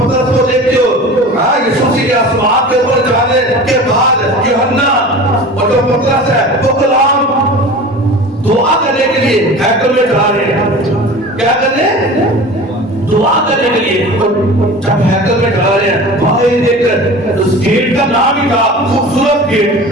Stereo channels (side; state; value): both; normal; correlation 0.37